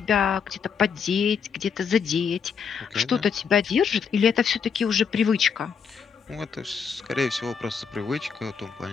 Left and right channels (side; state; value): right; quieter; 6.5 dB